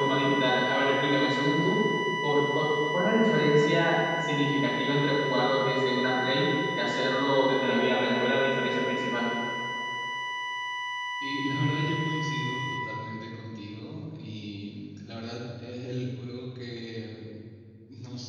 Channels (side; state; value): both; identical; correlation 1.00